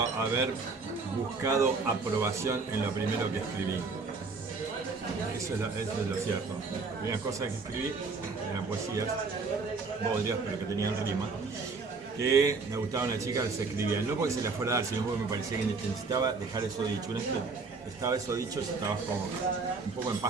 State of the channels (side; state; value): left; quieter; 4.3 dB